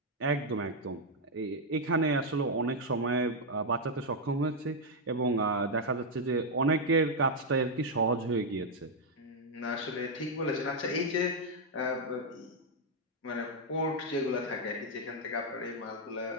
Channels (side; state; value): both; normal; correlation -0.01